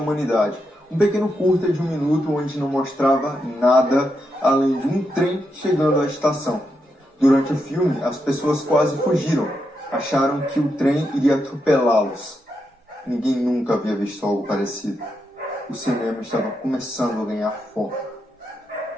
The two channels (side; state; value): both; normal; correlation 0.83